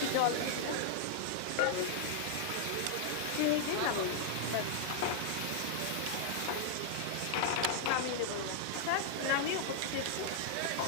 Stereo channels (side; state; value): both; different; correlation -0.01